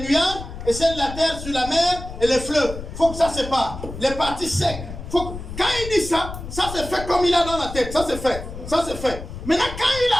et celle de la terre sur la mer et les fleuves. Il faut que ça se sépare. Les parties secs. Quand il dit ça, ça se fait comme il a dans la tête. Ça se fait. Ça se fait. Maintenant, quand il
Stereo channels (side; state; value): left; noise; rumble, 10 dB below the sound